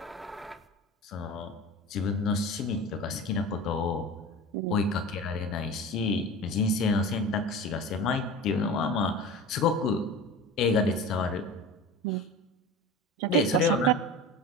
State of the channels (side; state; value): both; normal; correlation 0.34